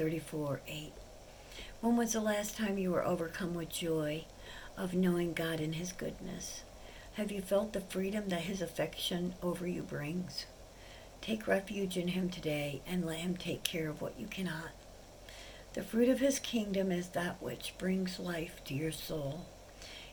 When was the last time you were overcome with joy of knowing God and His goodness? Have you felt the freedom that His affection over you brings? Take refuge in Him today and let Him take care of what you cannot. The fruit of His kingdom is that which brings life to your soul.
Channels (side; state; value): both; identical; correlation 1.00